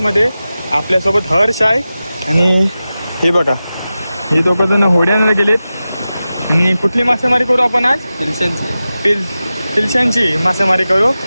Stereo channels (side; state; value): both; inverted; correlation -0.94